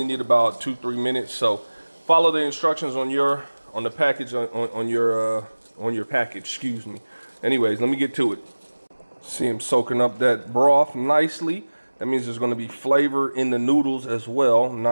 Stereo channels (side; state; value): both; inverted; correlation -1.00